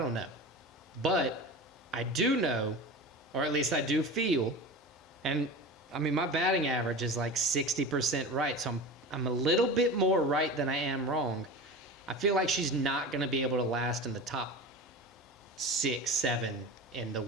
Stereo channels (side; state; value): both; normal; correlation 0.31